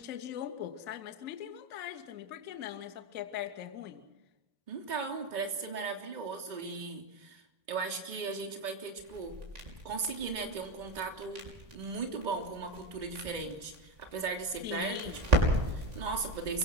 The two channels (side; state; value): left; late; 2.2 ms